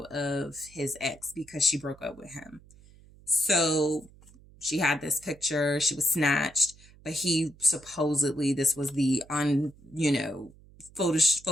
of his ex because she broke up with him. So she had this picture, she was snatched, but he supposedly, this was the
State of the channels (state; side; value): noise; right; hum, 24 dB below the sound